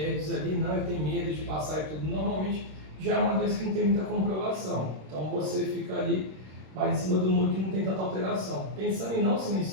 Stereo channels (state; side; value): late; left; 26 ms